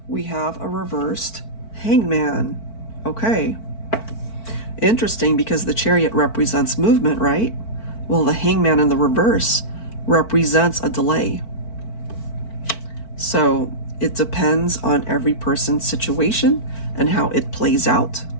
We have a reversed Hangman. Okay. Interesting, because the Chariot represents movement, right? Well, the Hangman in the reverse represents a delay. So it depends on every person's situation and how it plays out.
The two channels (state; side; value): late; right; 4.5 ms